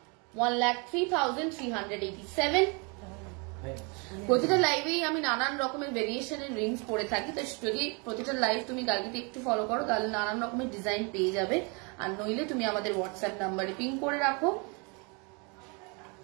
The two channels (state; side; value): quieter; left; 32.5 dB